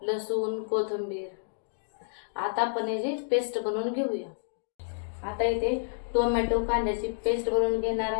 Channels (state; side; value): silent; right; digital silence